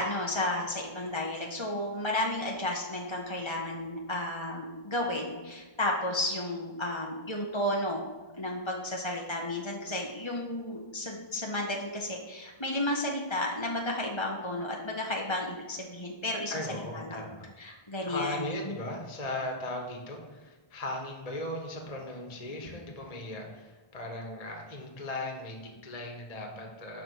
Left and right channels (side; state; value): right; late; 1.3 ms